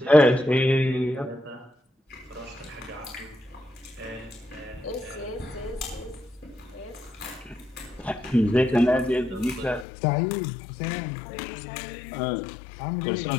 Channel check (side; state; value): right; drops out; at 9.9 s